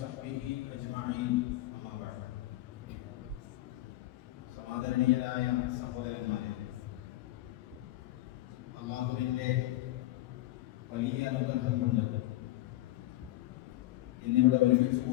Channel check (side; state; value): right; quieter; 16.7 dB